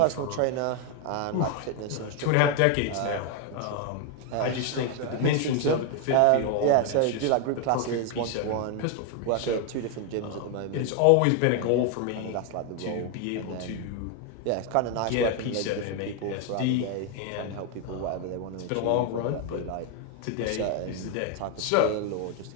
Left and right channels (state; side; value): different; both; correlation 0.01